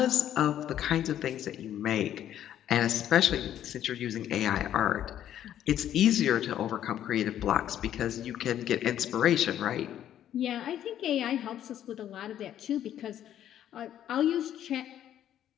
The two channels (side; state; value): right; quieter; 11.0 dB